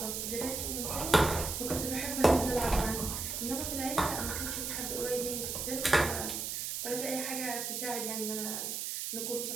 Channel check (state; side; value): noise; right; hiss, 3 dB below the sound